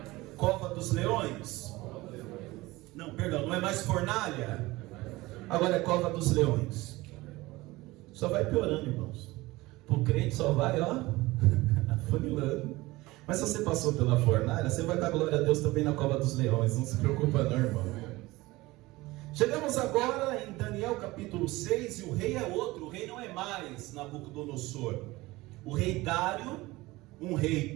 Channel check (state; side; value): quieter; left; 20.1 dB